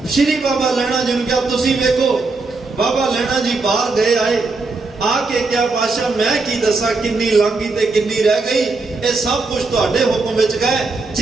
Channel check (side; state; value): left; quieter; 3.7 dB